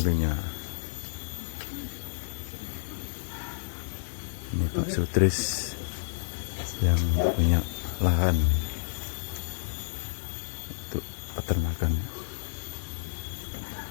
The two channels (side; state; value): right; silent; 58 dB below the other